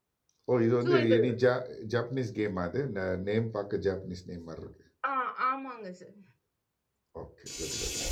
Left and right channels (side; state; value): both; identical; correlation 1.00